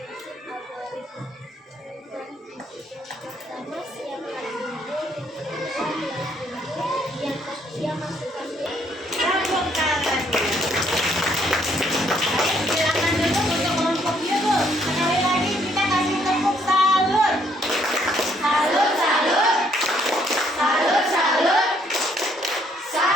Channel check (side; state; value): both; normal; correlation 0.68